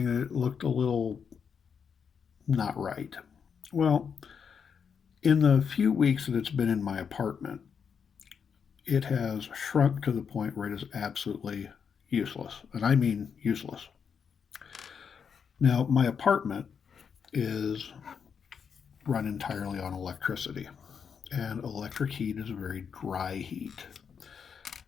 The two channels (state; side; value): quieter; right; 6.7 dB